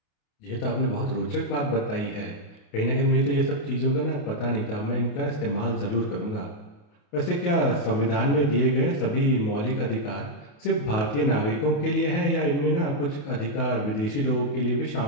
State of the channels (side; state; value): right; late; 28 ms